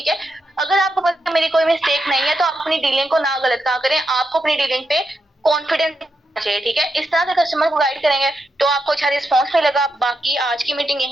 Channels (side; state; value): both; normal; correlation 0.84